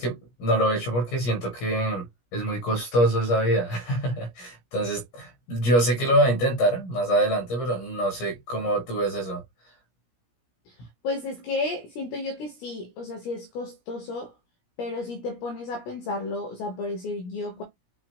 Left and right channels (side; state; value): right; late; 17 ms